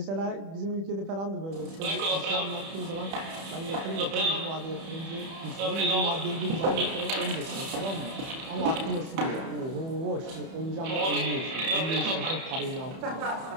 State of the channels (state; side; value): late; left; 31 ms